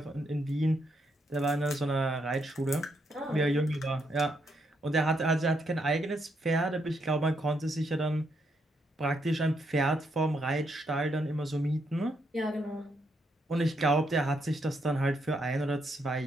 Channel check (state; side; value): normal; both; correlation 0.77